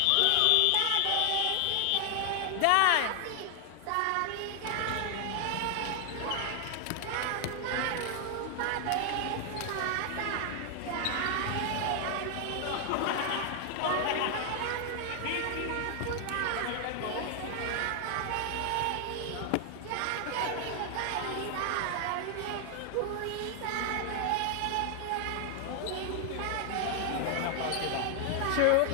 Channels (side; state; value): both; different; correlation 0.00